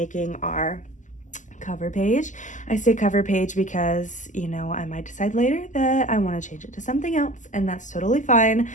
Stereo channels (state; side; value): late; right; 0.37 ms